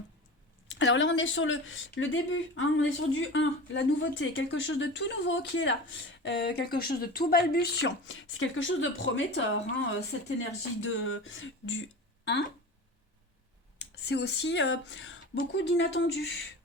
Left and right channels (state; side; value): normal; both; correlation 0.32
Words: Alors là, on est sur le début, on est sur du 1, la nouveauté, quelque chose de tout nouveau qui est là, quelque chose de tout balbutiant. C'est quelque chose de prometteur, cette énergie du 1. C'est aussi beaucoup d'inattendus,